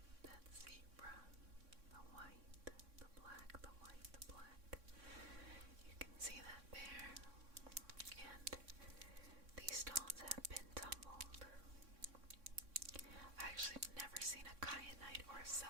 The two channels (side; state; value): left; late; 3.6 ms